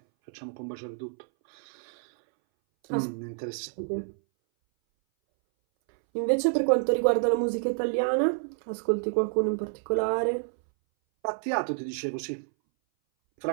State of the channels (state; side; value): silent; left; 59 dB below the other